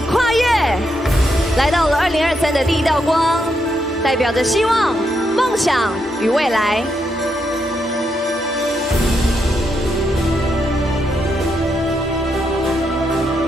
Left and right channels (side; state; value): both; normal; correlation 0.81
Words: 跨越，来到了2023的第一道光，代表着希望、梦想与未来。